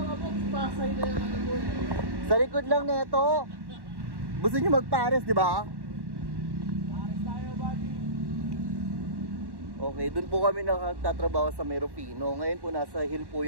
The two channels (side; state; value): left; late; 1.1 ms